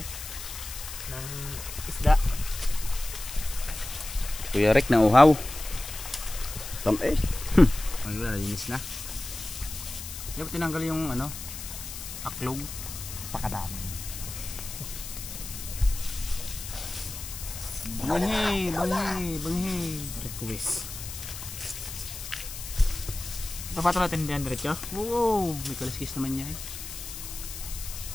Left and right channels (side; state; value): left; noise; hiss, 9 dB below the sound